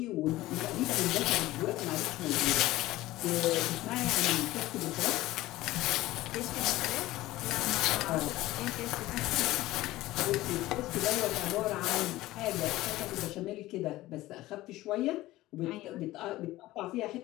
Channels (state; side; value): quieter; right; 17.1 dB